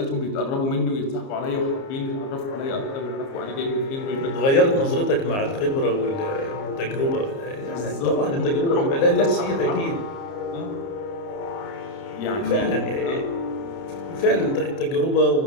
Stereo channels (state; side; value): late; right; 30 ms